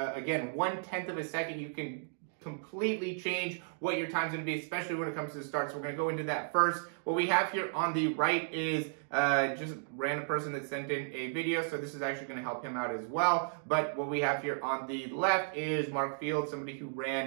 1/10 of a second, you can completely change what your time's going to be, especially when it comes to the start. So we're going to go into that first. What we have here on the right is just a random person that sent in a video, so this is actually going to help him out as well. But what we have here on the left is Mark Fields, somebody who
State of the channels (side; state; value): left; silent; digital silence